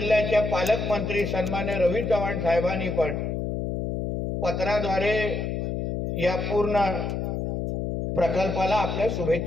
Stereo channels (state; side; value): noise; left; hum, 2 dB below the sound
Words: पालकमंत्री सन्मान्य रवी चव्हाण साहेबांनी पण पत्राद्वारे या पूर्ण प्रकल्पाला आपल्या